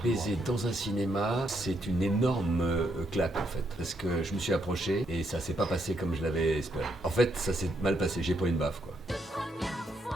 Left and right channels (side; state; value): both; normal; correlation 0.76